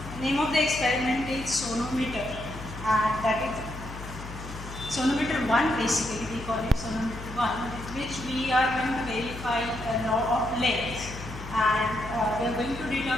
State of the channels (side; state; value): left; noise; hum, 12 dB below the sound